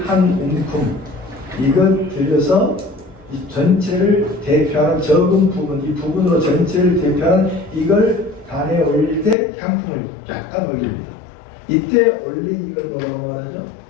한 움큼 이걸 들여서 이 전체를 대표하는 적은 부분, 이 부분으로 전체를 대표하는 이걸 단에 올릴 때 향품을 약간 올립니다. 이때 올린 이걸 뭐라고 말하죠?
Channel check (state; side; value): drops out; right; at 9.3 s